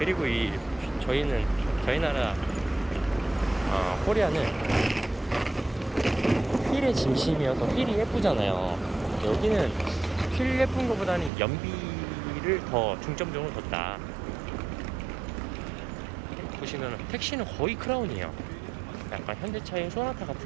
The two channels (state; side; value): drops out; left; at 11.3 s